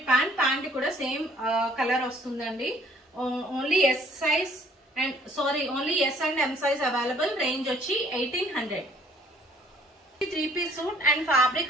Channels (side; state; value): both; normal; correlation 0.59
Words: ప్యాంట్. ప్యాంట్ కూడా సేమ్ కలర్ వస్తుందండి. Only S size and only S and M size available. Range వచ్చి 1800. 3 పీస్ సూట్ అండ్ ఫ్యాబ్రిక్